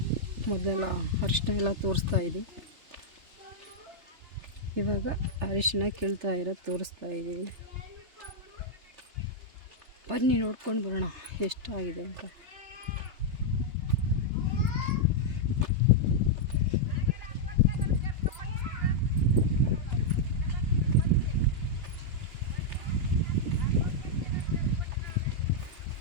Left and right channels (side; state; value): left; late; 3.3 ms